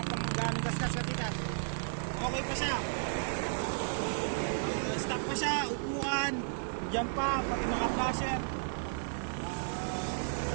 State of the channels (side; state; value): left; silent; digital silence